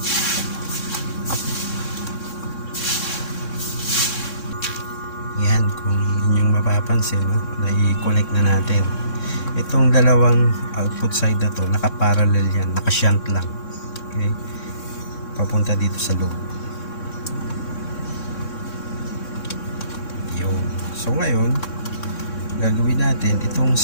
Yan, kung inyong mapapansin, no, na i-connect na natin. Itong dalawang output side na to, nakaparallel yan, nakashunt lang. Okay? Papunta dito sa load. Yun. So ngayon, gagawin natin, itong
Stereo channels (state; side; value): late; right; 3.6 ms